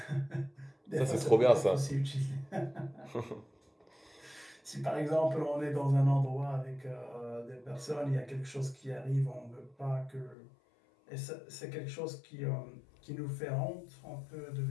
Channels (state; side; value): drops out; right; at 10.4 s